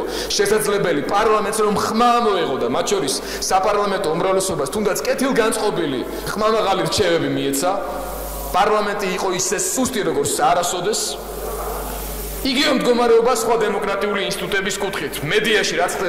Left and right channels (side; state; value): both; identical; correlation 1.00